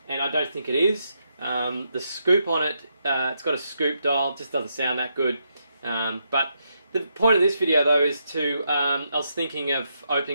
and I don't think it is. The scoop on it, it's got a scoop dial, it just doesn't sound that good. But the point of this video though is to, I was thinking of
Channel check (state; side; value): inverted; both; correlation -0.80